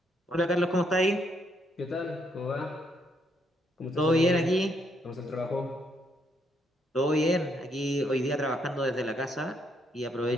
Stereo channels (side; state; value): both; normal; correlation 0.73